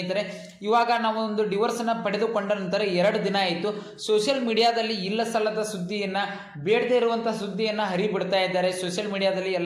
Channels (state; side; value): identical; both; correlation 1.00